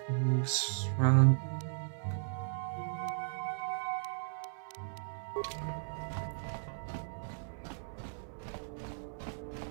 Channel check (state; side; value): silent; left; 54 dB below the other